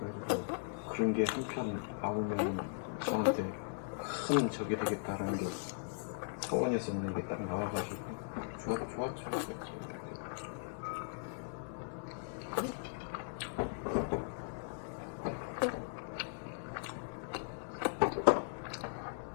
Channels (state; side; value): silent; right; digital silence